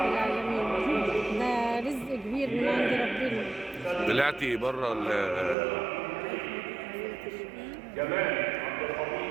العالمين، ده رزق كبير من عند ربنا. طلعتي بره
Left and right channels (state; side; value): drops out; left; at 5.6 s